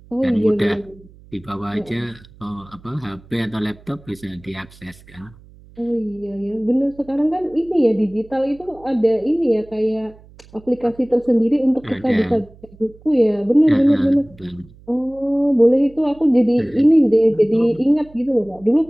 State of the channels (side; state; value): right; noise; hum, 24 dB below the sound